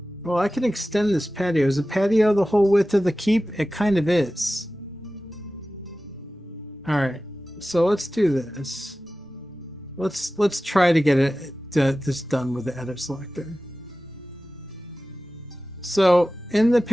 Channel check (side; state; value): both; normal; correlation 0.95